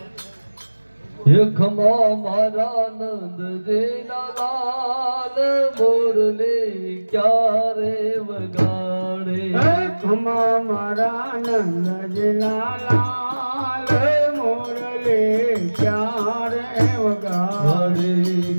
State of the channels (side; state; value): both; inverted; correlation -1.00